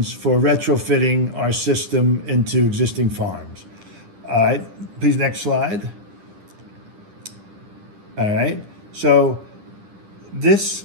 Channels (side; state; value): left; late; 10 ms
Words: for retrofitting our system into existing farms. All right. Please, next slide. All right. So this